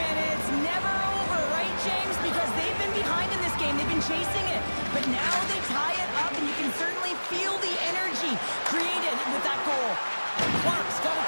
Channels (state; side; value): inverted; both; correlation -1.00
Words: it's never over, right, James? Because they've been behind in this game. They've been chasing it. But now they tie it up, and you can certainly feel the energy created with that goal. Clark's got it